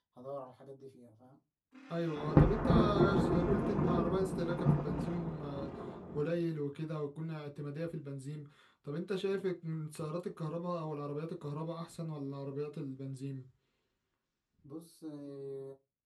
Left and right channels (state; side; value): identical; both; correlation 1.00